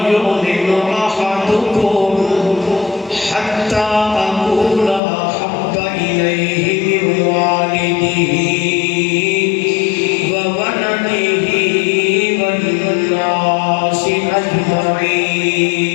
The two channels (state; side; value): drops out; right; at 5.0 s